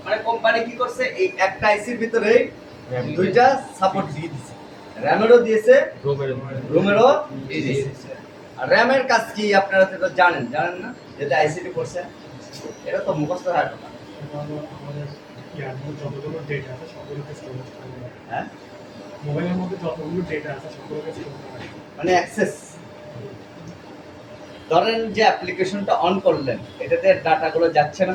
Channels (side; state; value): both; identical; correlation 1.00